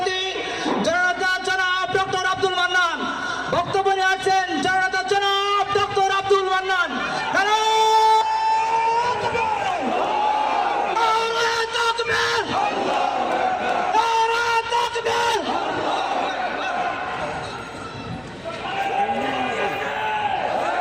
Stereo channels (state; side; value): noise; left; hum, 27 dB below the sound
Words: জননেতা জনাব ডক্টর আব্দুল মান্নান বক্তব্য নিয়ে আসছেন। জননেতা জনাব ডক্টর আব্দুল মান্নান।